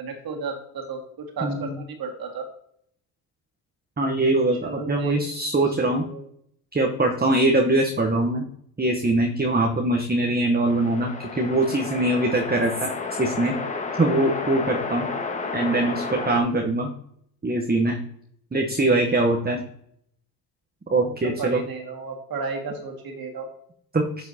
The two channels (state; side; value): normal; both; correlation 0.28